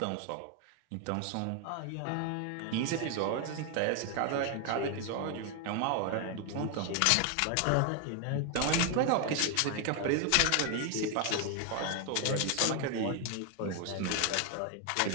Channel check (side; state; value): both; different; correlation 0.01